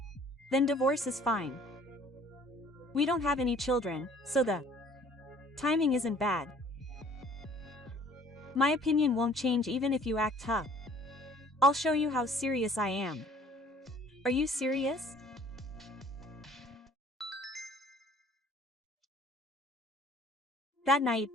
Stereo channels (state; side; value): normal; both; correlation 0.55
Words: Then divorce is fine. We don't have any children, so the timing isn't bad. My opinion won't change even if you act tough. I'll show you how serious I am. Are you serious? That night,